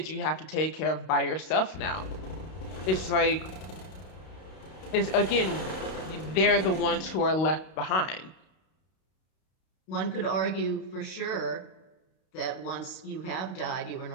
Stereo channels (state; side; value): late; right; 32 ms